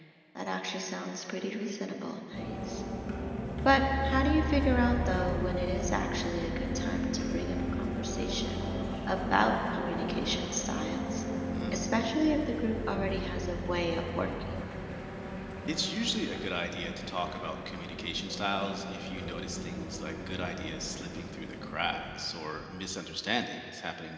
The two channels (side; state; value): both; identical; correlation 1.00